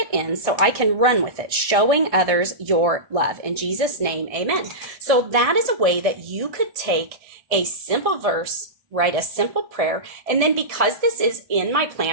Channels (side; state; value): left; late; 1.6 ms